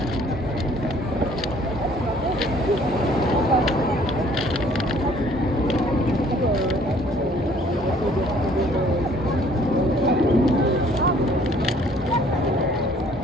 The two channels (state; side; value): normal; both; correlation 0.58